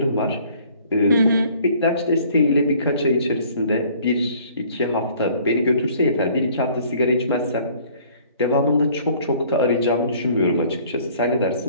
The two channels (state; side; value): inverted; both; correlation -0.56